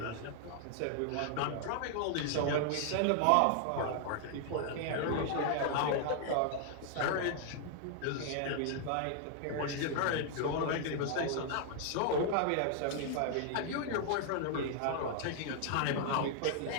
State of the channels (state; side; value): different; both; correlation 0.00